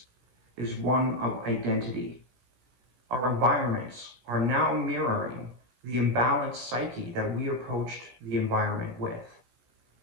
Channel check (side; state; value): left; late; 17 ms